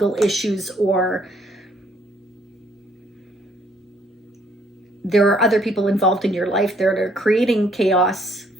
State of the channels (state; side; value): normal; both; correlation 0.66